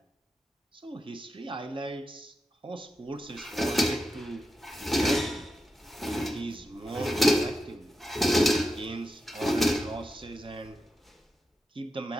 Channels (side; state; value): both; normal; correlation 0.88